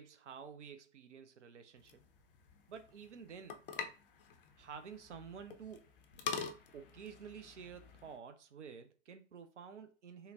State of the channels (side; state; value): both; normal; correlation -0.09